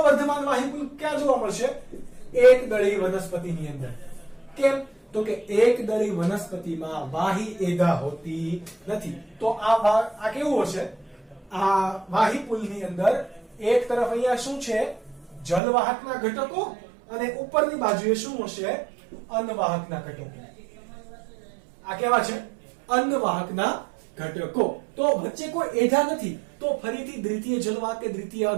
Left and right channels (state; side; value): drops out; left; at 15.6 s